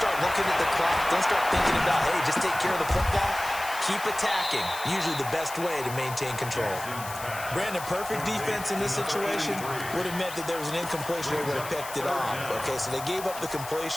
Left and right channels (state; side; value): noise; left; hiss, 12 dB below the sound